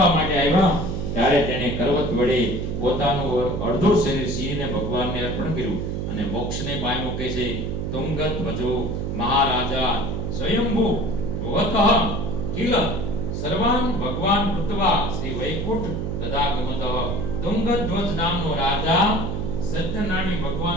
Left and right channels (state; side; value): noise; right; hum, 3 dB below the sound